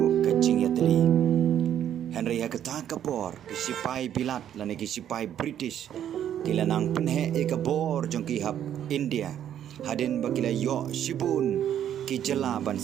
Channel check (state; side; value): quieter; left; 10.3 dB